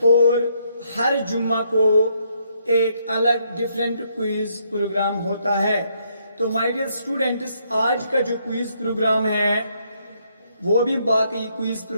और हर जुम्मा को एक अलग डिफरेंट क्विज प्रोग्राम होता है। तो माय डियर स्टूडेंट्स, आज का जो क्विज प्रोग्राम है वो भी बाकी क्विज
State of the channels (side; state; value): both; inverted; correlation -0.73